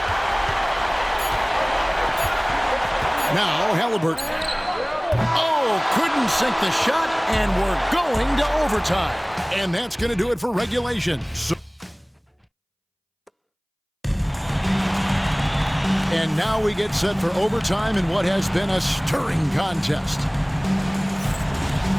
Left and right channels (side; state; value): both; identical; correlation 1.00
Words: Now Halliburton. Oh, couldn't sink the shot, and we're going to overtime. And that's going to do it for regulation. And now we get set for overtime in what has been a stirring contest.